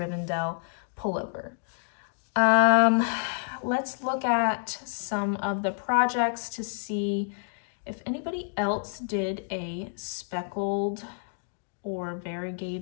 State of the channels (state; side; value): silent; right; digital silence